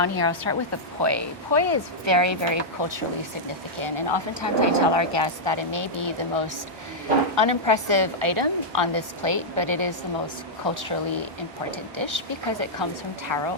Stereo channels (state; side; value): normal; both; correlation -0.07